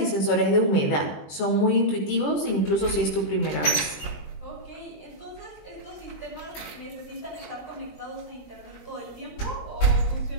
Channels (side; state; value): right; late; 20 ms